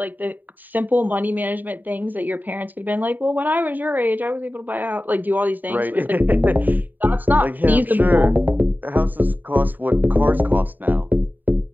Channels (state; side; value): late; left; 0.088 ms